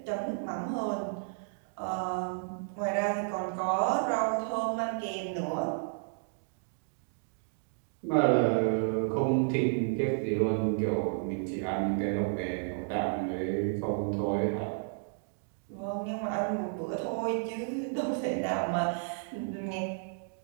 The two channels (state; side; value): silent; left; digital silence